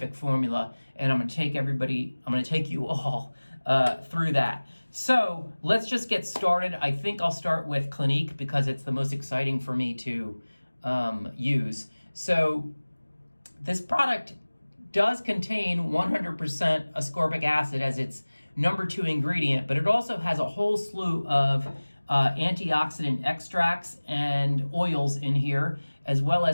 formula, and I'm gonna take you all through that. So let's just get started. I think I'll start with Clinique because it's the most exciting for me to use. So this product does contain 100% ascorbic acid as its number 2 ingredient, but it also has a whole slew of antioxidant extracts and oils in here, as well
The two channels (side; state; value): both; inverted; correlation -1.00